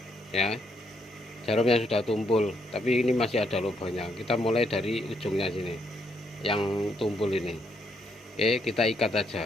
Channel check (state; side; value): normal; both; correlation 0.75